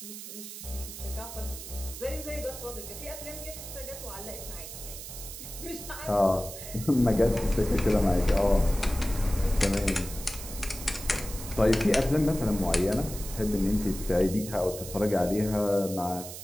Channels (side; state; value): right; noise; hiss, 11 dB below the sound